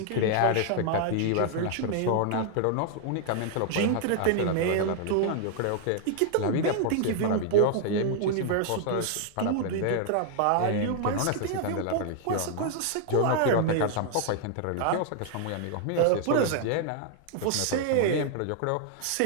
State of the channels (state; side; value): different; both; correlation 0.00